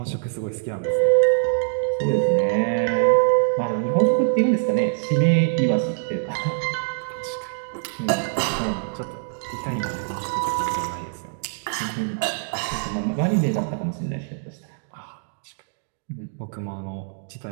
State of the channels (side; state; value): left; silent; digital silence